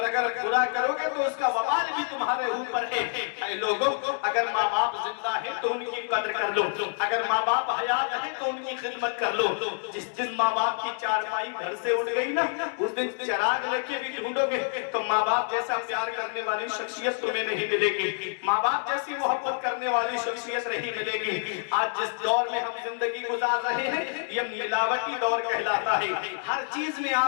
اگر برا کرو گے تو اس کا وبال بھی تمہارے اوپر ہے. اے لوگوں، اگر ماں باپ زندہ ہے تو ان کی قدر کر لو، اگر ماں باپ حیات ہے تو ان کی خدمت کر لو. جس دن ماں باپ کی چارپائی گھر سے اٹھ گئی نا، اس دن چراغ لے کے بھی ڈھونڈو گے تو ماں باپ جیسا پیار کرنے والی شخصیت تمہیں نہیں ملے گی، ماں باپ جیسی محبت کرنے والی شخصیت نہیں ملے گی. آج جس دور میں ہم زندگی گزار رہے ہیں یہ ملاوٹی دور کہلاتا ہے. ہر چیز میں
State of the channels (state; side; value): silent; right; digital silence